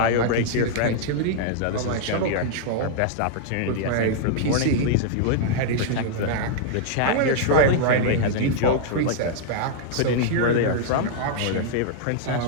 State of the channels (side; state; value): both; different; correlation -0.01